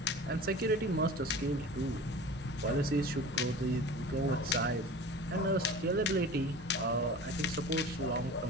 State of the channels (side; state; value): both; normal; correlation 0.38